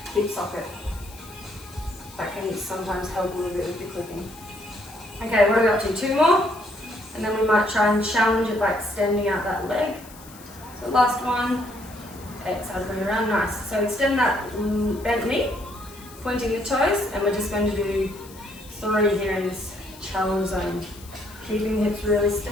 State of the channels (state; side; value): noise; left; hiss, 20 dB below the sound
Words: hip socket. That can sometimes help a little bit with the clicking. Okay, what are we up to? 2 more? And then we might try and challenge it by extending out that leg. So last one. Exhale, bring it around, nice. So extend that bent knee, pointing the toes, and we're just going to do 3 here in this challenge zone. Keeping the hips really